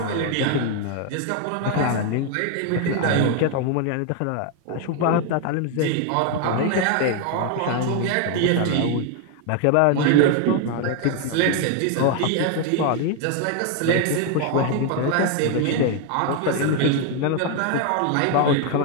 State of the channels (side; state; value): both; different; correlation 0.01